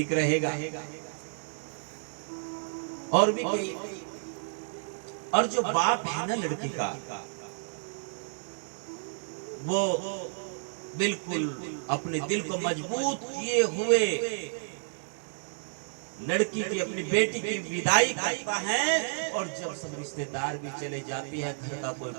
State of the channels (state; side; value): silent; left; digital silence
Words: रहेगा। और भी कई, और जो बाप है ना लड़की का, वो बिल्कुल अपने दिल को मजबूत किए हुए लड़की की, अपनी बेटी की विदाई करता है। और जब सब रिश्तेदार भी चले जाती है, घर का कोई